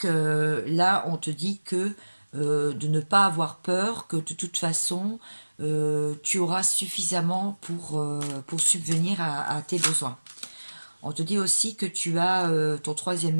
là, on te dit que de ne pas avoir peur, que de toute façon, tu auras suffisamment pour subvenir à tes besoins. On te dit aussi que tu as ton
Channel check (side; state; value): both; inverted; correlation -1.00